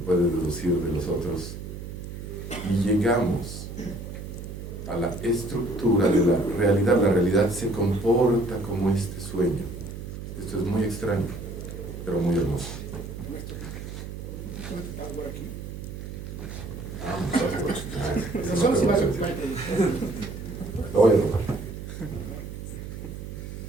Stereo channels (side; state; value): right; noise; hum, 9 dB below the sound